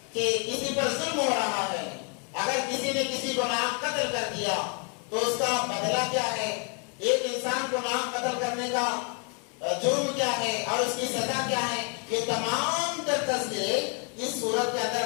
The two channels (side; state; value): right; quieter; 37.8 dB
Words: کہ کسی پر ظلم ہو رہا ہے، اگر کسی نے کسی کو ناحق قتل کر دیا تو اس کا بدلہ کیا ہے، ایک انسان کو ناحق قتل کرنے کا جرم کیا ہے اور اس کی سزا کیا ہے، یہ تمام تر تذکرے اس سورت کے اندر